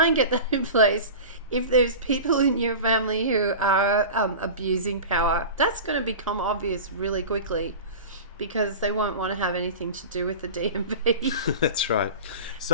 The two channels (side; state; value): both; inverted; correlation -0.32